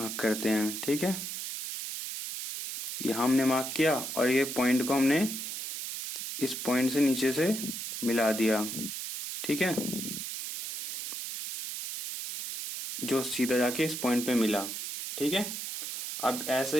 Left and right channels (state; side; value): noise; right; hiss, 6 dB below the sound